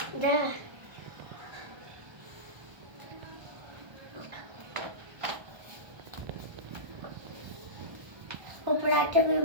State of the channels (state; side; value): late; left; 1.3 ms